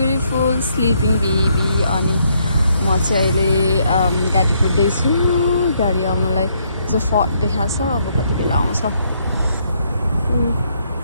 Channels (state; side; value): inverted; both; correlation -0.72